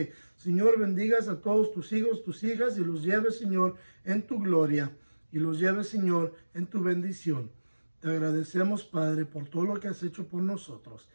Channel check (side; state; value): both; inverted; correlation -1.00